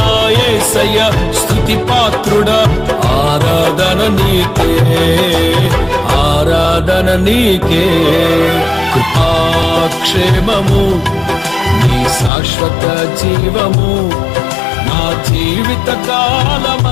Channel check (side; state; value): right; drops out; at 12.3 s